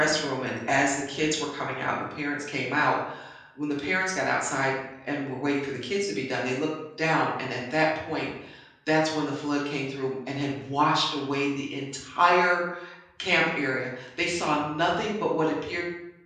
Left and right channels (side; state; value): both; identical; correlation 1.00